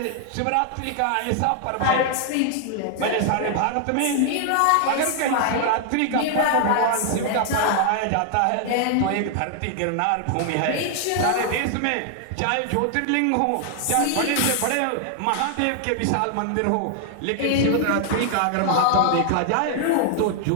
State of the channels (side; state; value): both; different; correlation 0.00